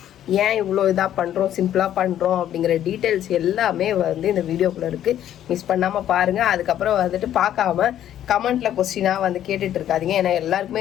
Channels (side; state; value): right; quieter; 11.3 dB